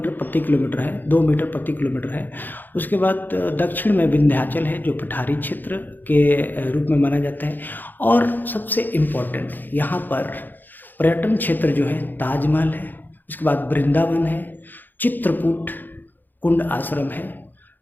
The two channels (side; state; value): right; late; 0.088 ms